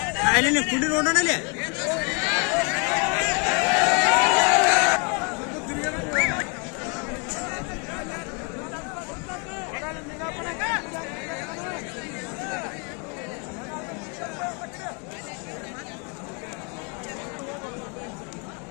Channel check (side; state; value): right; quieter; 34.2 dB